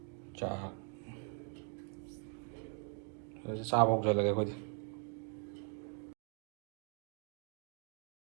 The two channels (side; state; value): left; quieter; 39.6 dB